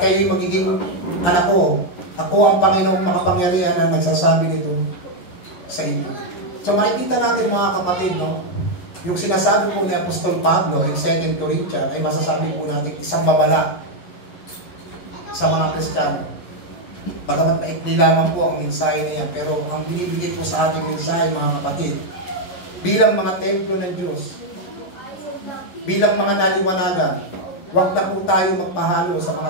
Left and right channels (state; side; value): late; right; 11 ms